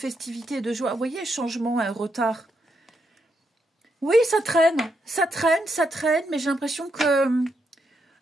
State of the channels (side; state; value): both; normal; correlation 0.80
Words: et de joie. Vous voyez, changement, un retard. Oui, ça traîne, mais j'ai l'impression que